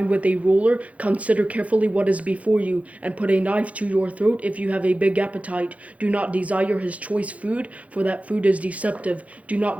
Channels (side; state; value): left; late; 0.066 ms